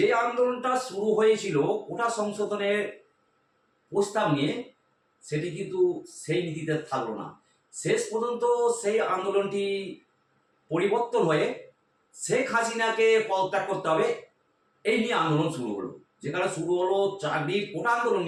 আন্দোলনটা শুরু হয়েছিল কোটা সংশোধনের প্রস্তাব নিয়ে, সেটি কিন্তু সেই নীতিতে থাকলো না। শেষ পর্যন্ত সেই আন্দোলনটি পরিবর্তন হয়ে শেখ হাসিনাকে পদত্যাগ করতে হবে, এই নিয়ে আন্দোলন শুরু হলো। যেখানে শুরু হলো চাকরির কোটা আন্দোলন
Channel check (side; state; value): both; identical; correlation 1.00